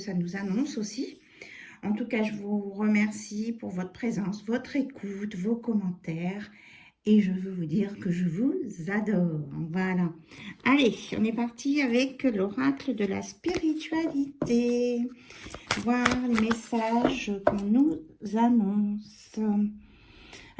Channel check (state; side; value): identical; both; correlation 1.00